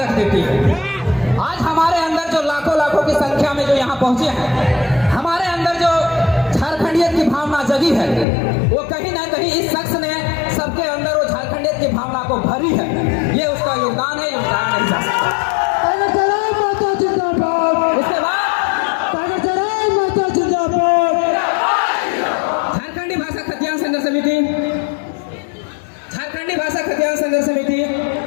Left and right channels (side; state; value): right; drops out; at 8.2 s